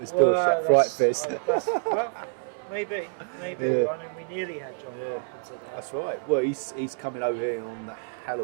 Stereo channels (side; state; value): left; silent; 60 dB below the other